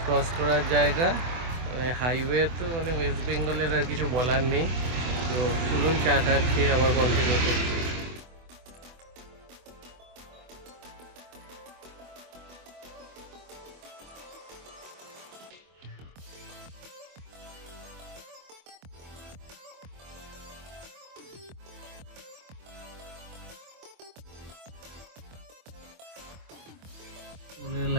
ক্রস করার জায়গা, মানে হাইওয়ে তো মানে ওয়েস্ট বেঙ্গলের আর কিছু বলার নেই। তো চলুন চাটা খেয়ে আবার কন্টিনিউ করছি। টোলের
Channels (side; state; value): left; late; 24 ms